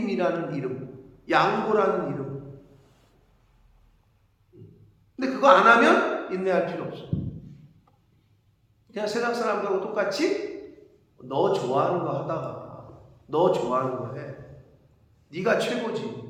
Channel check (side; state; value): both; identical; correlation 1.00